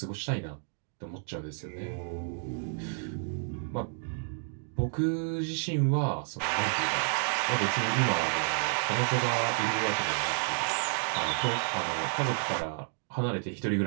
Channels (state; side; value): silent; left; 57 dB below the other